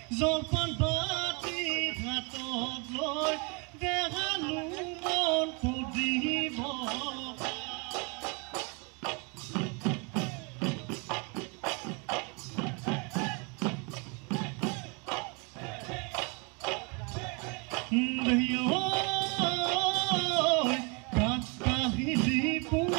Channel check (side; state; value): left; quieter; 32.1 dB